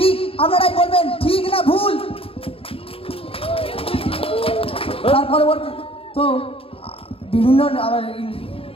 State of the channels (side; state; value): right; late; 0.27 ms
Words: আপনারাই বলবেন ঠিক না ভুল। তার পরবর্তী তো বিভিন্ন